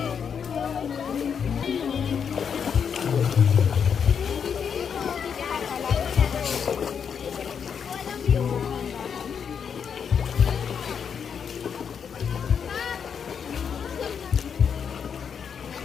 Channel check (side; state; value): right; quieter; 7.1 dB